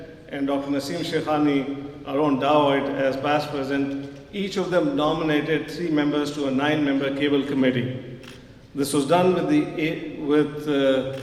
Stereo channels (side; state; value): both; identical; correlation 1.00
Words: and Dr. Naseem Shekhani, our own Dawoit, as past president, each of them nominated 3 members to a 9-member cable committee. This was done with